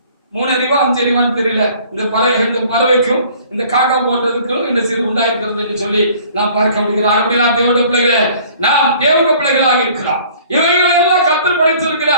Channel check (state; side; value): inverted; both; correlation -0.53